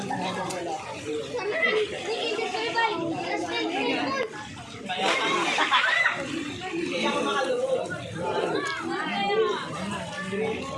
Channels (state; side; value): identical; both; correlation 1.00